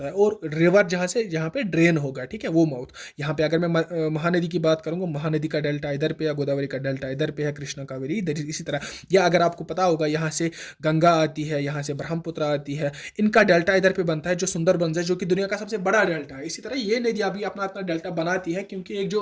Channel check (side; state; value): both; identical; correlation 1.00